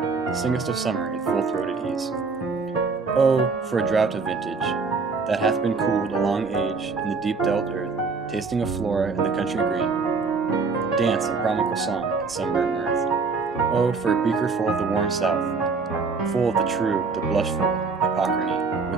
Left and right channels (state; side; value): quieter; left; 4.6 dB